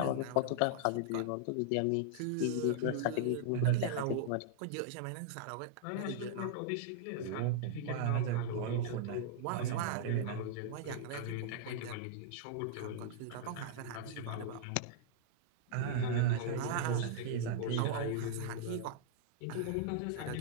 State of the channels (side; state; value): both; different; correlation -0.01